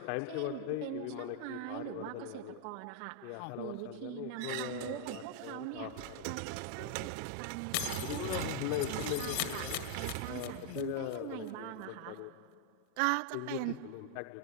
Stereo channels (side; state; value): both; different; correlation 0.00